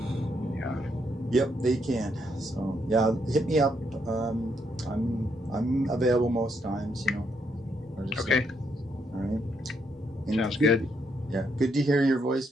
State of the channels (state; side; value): normal; both; correlation 0.76